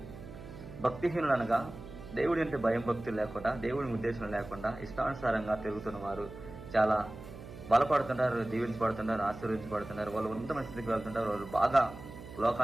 భక్తిహీనులు అనగా దేవుడి అంటే భయం భక్తులు లేకుండా, దేవుడి ఉద్దేశం లేకుండా ఇష్టానుసారంగా తిరుగుతున్న వారు చాలా బలపడుతుంటారు, దీవించబడుతుంటారు, ఆశీర్వించబడుతుంటారు. వాళ్ళు ఉన్నతమైన స్థితికి వెళ్తుంటారు, వాళ్ళు బాగా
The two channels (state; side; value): noise; right; hum, 13 dB below the sound